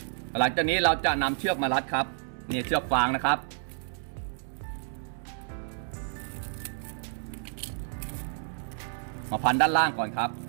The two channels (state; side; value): silent; left; digital silence